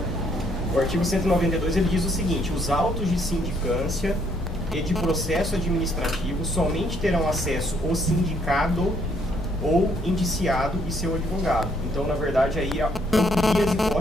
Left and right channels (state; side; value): normal; both; correlation 0.68